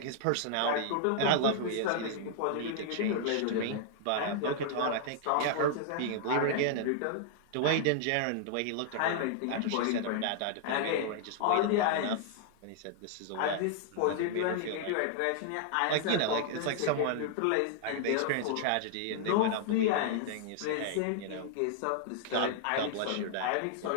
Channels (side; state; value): both; different; correlation -0.01